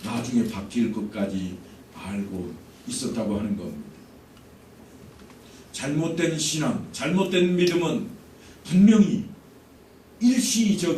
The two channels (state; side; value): identical; both; correlation 1.00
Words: 나중에 바뀔 것까지 알고 있었다고 하는 겁니다. 잘못된 신앙, 잘못된 믿음은 분명히